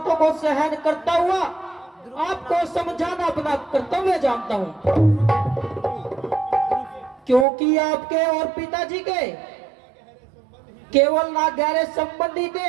को सहन करता हुआ आपको समझाना अपना कर्तव्य जानता हूँ। क्योंकि आपके और पिताजी के केवल ना गहरे संबंधी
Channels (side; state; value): left; drops out; at 7.5 s